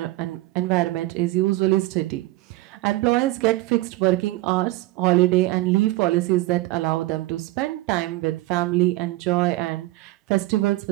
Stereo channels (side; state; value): left; quieter; 18.5 dB